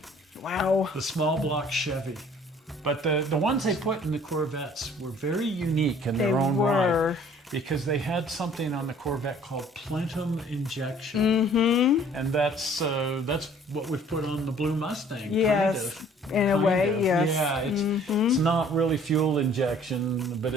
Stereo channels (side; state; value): both; normal; correlation 0.55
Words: Wow. The small block Chevy. But the ones they put in the Corvettes were very unique in their own right. Because they had something on the Corvette called plenum injection. Mm-hmm. And that's what we've put on the blue Mustang. Yes, in a way, yes. Yeah, it's not really fuel injection, but